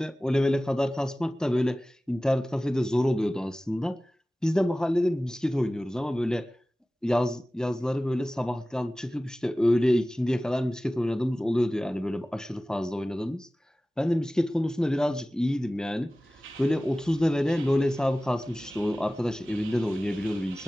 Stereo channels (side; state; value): both; normal; correlation 0.97